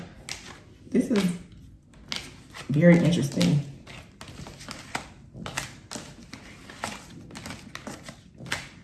This is very interesting.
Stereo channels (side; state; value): both; identical; correlation 1.00